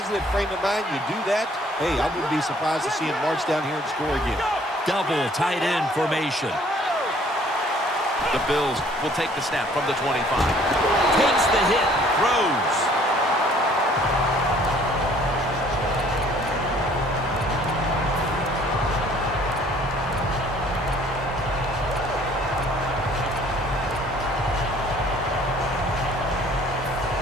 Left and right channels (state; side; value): normal; both; correlation 0.57